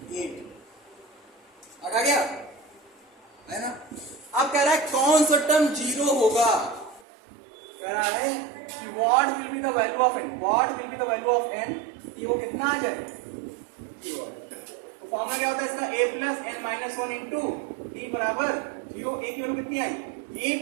8 आ गया है ना अब कह रहा है कौन सा टर्म जीरो होगा कह रहा है कि what will be the value of n what will be the value of n कि वो कितना आ जाए तो फॉर्मूला क्या होता है इसका a plus n minus 1 into d बराबर 0 a की वैल्यू कितनी आई a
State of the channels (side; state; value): left; drops out; at 7.1 s